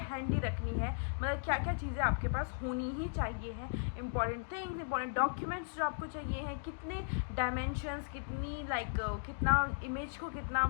हैंडी रखनी है, मतलब क्या क्या चीज़ें आपके पास होनी ही चाहिए हैं। इंपॉर्टेंट थिंग्स, इंपॉर्टेंट डॉक्यूमेंट्स जो आपको चाहिए हैं, कितने डायमेंशंस, कितनी कितना इमेज को कितना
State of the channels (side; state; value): right; silent; digital silence